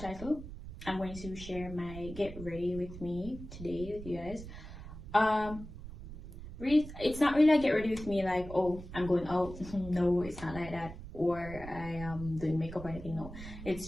title, I'm going to share my get ready with me today with you guys. It's not really a get ready with me like, oh, I'm going out. No, it's not like that, or I am doing makeup or anything. No,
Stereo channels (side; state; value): right; noise; rumble, 12 dB below the sound